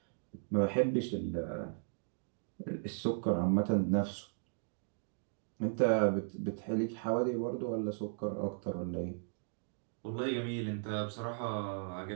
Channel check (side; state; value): left; silent; digital silence